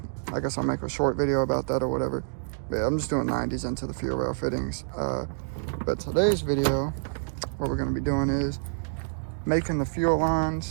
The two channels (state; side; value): silent; left; digital silence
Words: guess I'll make a short video about that or whatever. But yeah, I'm just doing 90s into the fuel rail fittings. But today's video, what we're going to be doing is making the fuel